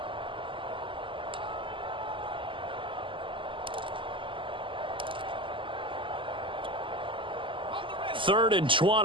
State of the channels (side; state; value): left; late; 0.25 ms